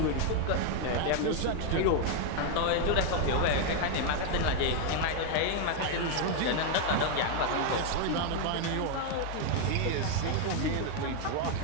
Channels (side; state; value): both; different; correlation 0.01